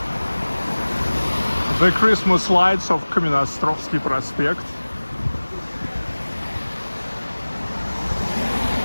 The Christmas lights of Kamennoostrovsky Prospekt.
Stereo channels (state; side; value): inverted; both; correlation -1.00